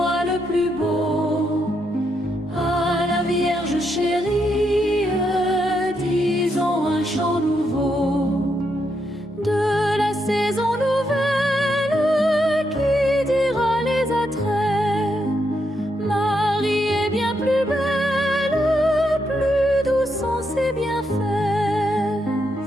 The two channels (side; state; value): both; normal; correlation 0.80